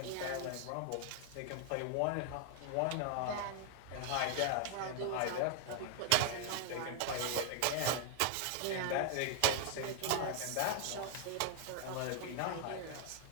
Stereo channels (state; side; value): different; both; correlation 0.00